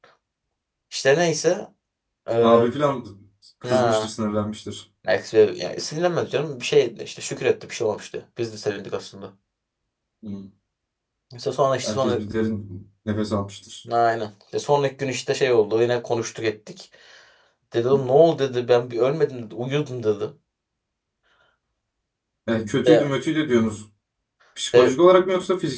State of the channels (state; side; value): identical; both; correlation 1.00